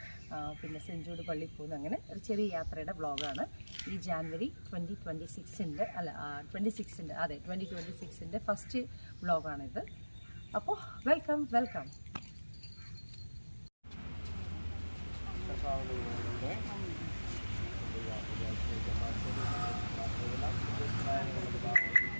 പിന്നെ സെൻറ്റ് ജൂഡ് പള്ളിയിൽ പോകുന്നു. അങ്ങനെ ഒരു ചെറിയ യാത്രയുടെ വ്ളോഗാണ് ഈ ജാനുവരി 2026 അല്ല 26 അതെ 2026 ഫസ്റ്റ് വ്ളോഗാണിത്. അപ്പോൾ വെൽക്കം.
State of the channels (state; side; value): inverted; both; correlation -1.00